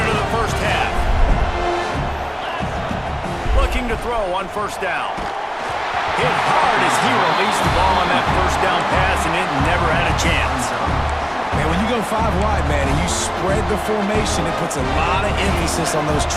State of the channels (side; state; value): both; identical; correlation 1.00